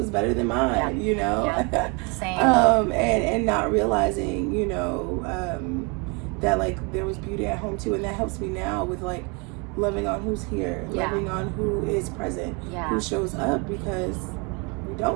better than mine, you know. Same. And not realizing, you know, that like there was beauty at home too, and that helps me now with like loving on who's here, loving on who is present, who shows up, because we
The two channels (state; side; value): quieter; left; 31.4 dB